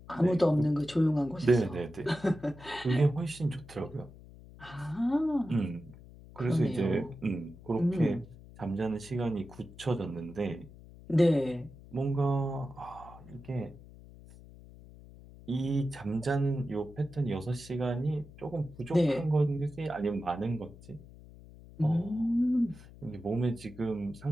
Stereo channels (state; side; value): noise; left; hum, 19 dB below the sound